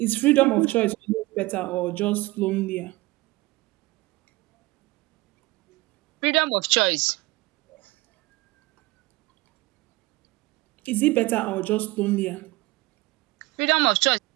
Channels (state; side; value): quieter; left; 20.6 dB